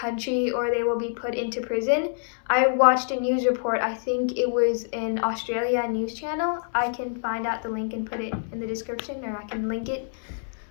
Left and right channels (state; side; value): silent; right; digital silence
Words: or they will be put into prison. I watched a news report, I think it was in Australia news channel. I can find out the link and put it in the description, or I can link it.